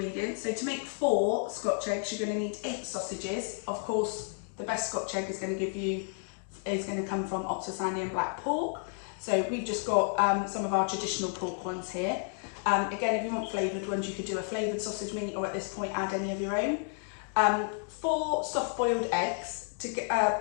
So to make 4 Scotch eggs, you're going to need 8 sausages. Of course, the best Scotch egg is going to come from Oxford Sandy and Black pork. So we've just got some of our traditional pork ones here. Again, if you want flavoured ones, you could do a flavoured sausage meat, or at this point add any of your own. 4 soft boiled eggs. To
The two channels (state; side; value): silent; right; 57 dB below the other